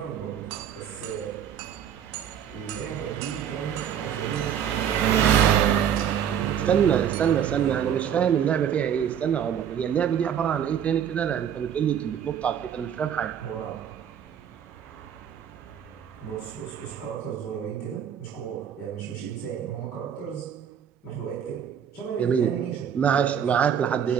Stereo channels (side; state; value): left; quieter; 8.8 dB